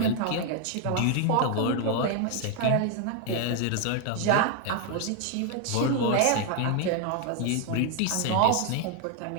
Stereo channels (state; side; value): different; both; correlation 0.01